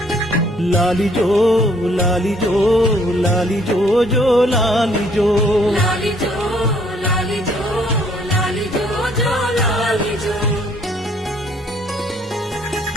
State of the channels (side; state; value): both; normal; correlation 0.63